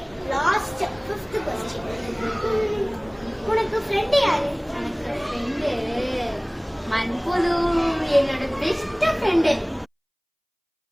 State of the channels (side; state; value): both; identical; correlation 1.00